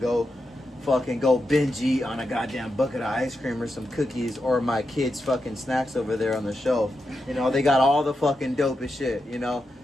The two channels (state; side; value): normal; both; correlation 0.87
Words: binge eat on a goddamn bucket of ice cream or some cookies or my kids' fucking snacks over there on the shelf. You know, they got all the fucking dopest shit, you know?